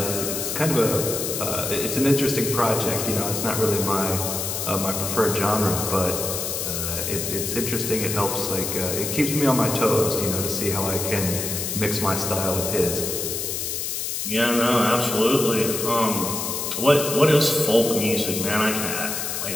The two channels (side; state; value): left; noise; hiss, 3 dB below the sound